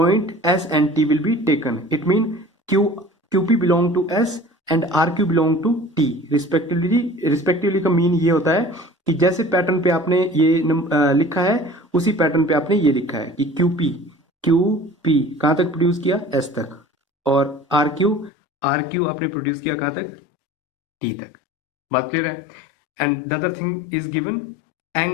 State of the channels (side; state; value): right; drops out; at 18.3 s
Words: S and T will be taken. It means QP belong to S and RQ belong to T respectively का mean ये होता है कि जैसे pattern पे आपने ये लिखा है उसी पैटर्न पे आपने ये लिखा है कि QP कहाँ तक प्रोड्यूस किया, S तक, और RQ आपने प्रोड्यूस किया कहाँ तक, T तक. बात क्लियर है. And the other thing is given